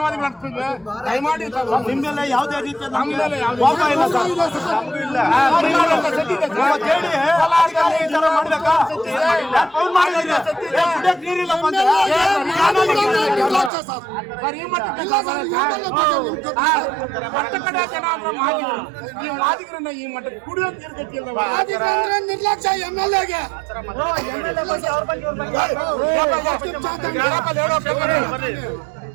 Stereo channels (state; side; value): drops out; left; at 13.7 s